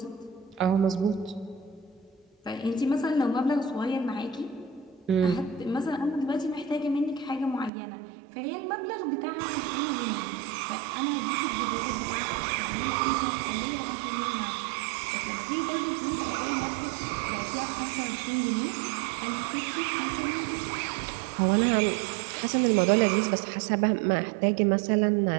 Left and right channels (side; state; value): left; drops out; at 7.7 s